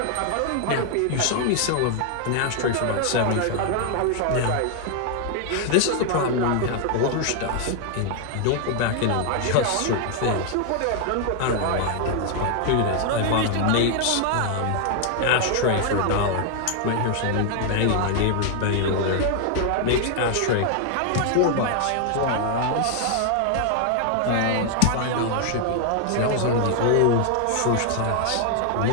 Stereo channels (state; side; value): different; both; correlation 0.00